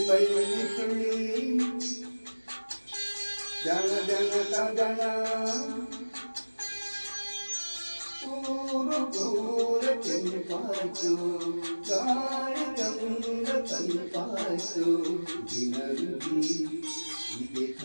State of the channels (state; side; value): inverted; both; correlation -1.00